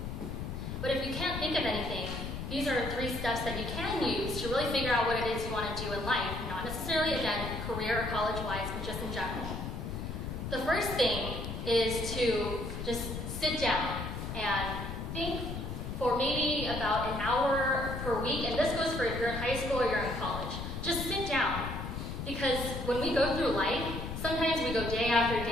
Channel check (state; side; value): noise; left; rumble, 5 dB below the sound